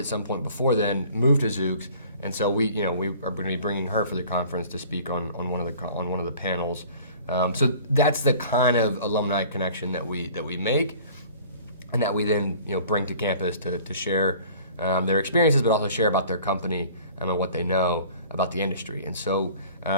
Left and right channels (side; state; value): both; inverted; correlation -0.49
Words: some point before then, moved to Zoox, and so we are going to be bringing her for the conference to speak on one of the panels. So that's the kind of alumni connection that we make, and that we then bring to campus to share their experiences, but also share about their company and what they know about the industry. And so